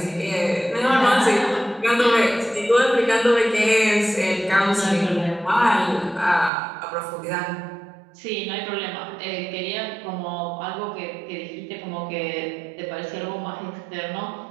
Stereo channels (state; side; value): drops out; left; at 6.5 s